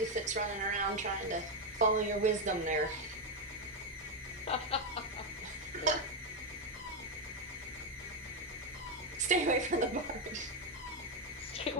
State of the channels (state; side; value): normal; both; correlation 0.06